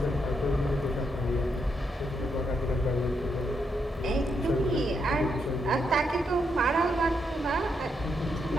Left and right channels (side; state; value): both; normal; correlation 0.80